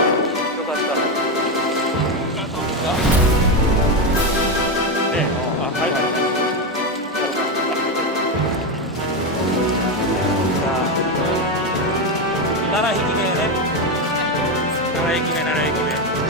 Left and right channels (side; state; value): both; normal; correlation 0.10